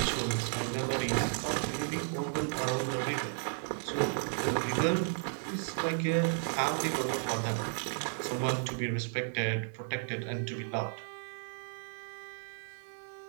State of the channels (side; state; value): left; silent; digital silence